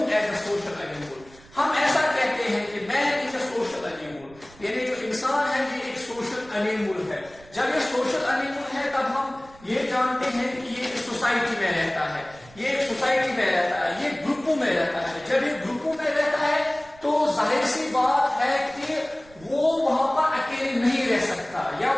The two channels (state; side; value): noise; right; rumble, 24 dB below the sound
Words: as a social animal. ہم ایسا کہتے ہیں کہ man is a social animal. یعنی جو انسان ہے یہ ایک سوشل انیمل ہے. جب یہ سوشل انیمل ہے تب ہم یہ جانتے ہیں کہ یہ ایک سوسائٹی میں رہتا ہے، یہ ایک سوسائٹی میں رہتا ہے، یہ گروپوں میں رہتا ہے. جب یہ گروپوں میں رہتا ہے تو ظاہر سی بات ہے کہ وہ وہاں پر اکیلے نہیں رہ سکتا، یا